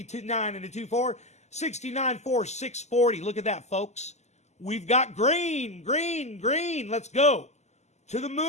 9 and a 2 4. 69 4 640. Look at that, folks. We've got green, green, green. Let's go. To the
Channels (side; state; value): right; late; 0.33 ms